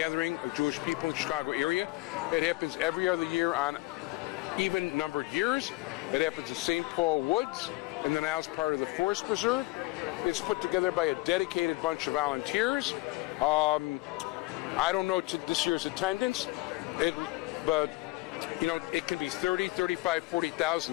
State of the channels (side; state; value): right; quieter; 21.3 dB